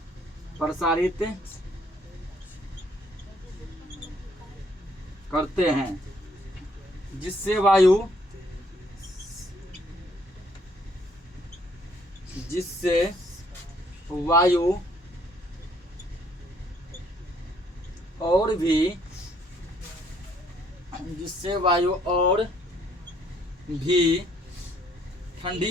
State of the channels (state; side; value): normal; both; correlation 0.65